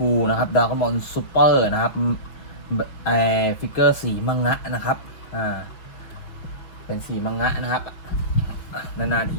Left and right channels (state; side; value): late; right; 5.8 ms